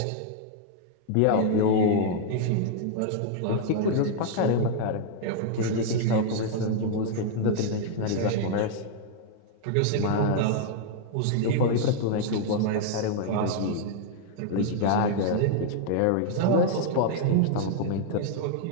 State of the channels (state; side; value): different; both; correlation -0.01